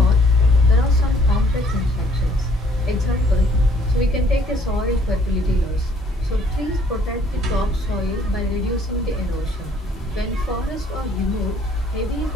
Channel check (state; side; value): normal; both; correlation 0.62